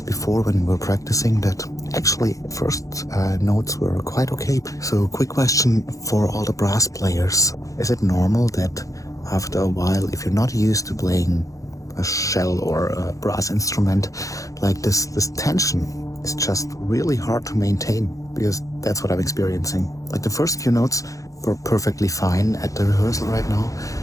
before when we were practicing that actually first notes were quite okay. So quick question for all the brass players. Is it normal that after a while, if you're not used to playing a shell or a brass instrument like this tension is just really hard to maintain? Because that's what I'm experiencing. Like the first few notes were perfectly fine at the rehearsal right now,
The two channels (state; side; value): late; right; 0.16 ms